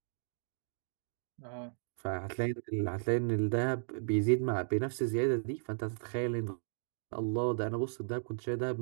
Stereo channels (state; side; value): silent; left; digital silence